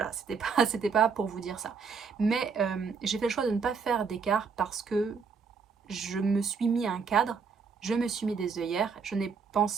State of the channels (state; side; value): quieter; left; 5.5 dB